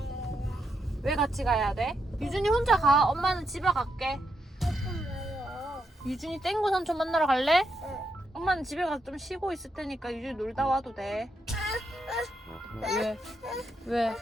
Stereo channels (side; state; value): both; normal; correlation 0.81